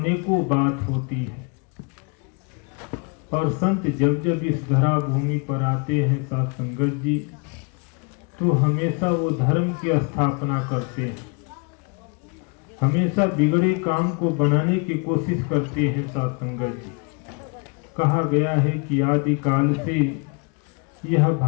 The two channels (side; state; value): right; quieter; 34.3 dB